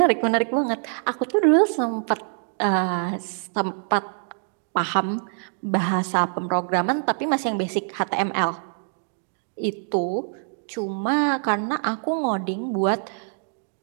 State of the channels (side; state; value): left; silent; digital silence